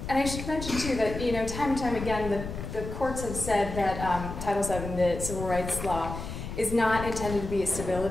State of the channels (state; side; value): noise; left; rumble, 8 dB below the sound